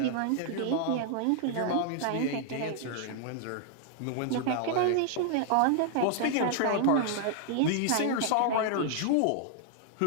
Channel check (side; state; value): both; different; correlation -0.01